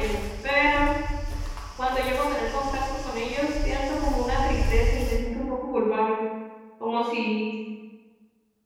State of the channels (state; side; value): identical; both; correlation 1.00